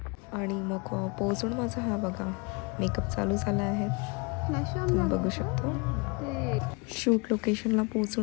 आणि मग पोहोचून माझा हा बघा मेकअप चालू झाला आहे, तुम्ही बघू शकता. शूट लोकेशनला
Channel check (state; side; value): quieter; right; 30.7 dB